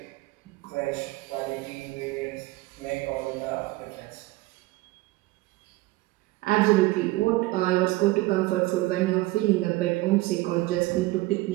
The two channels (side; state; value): left; quieter; 19.8 dB